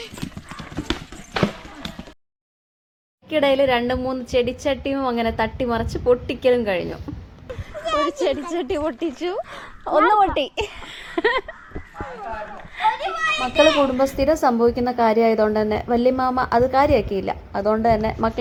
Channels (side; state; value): both; identical; correlation 1.00